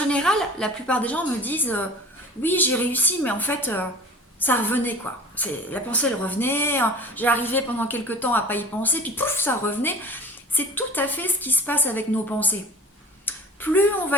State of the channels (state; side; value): normal; both; correlation 0.41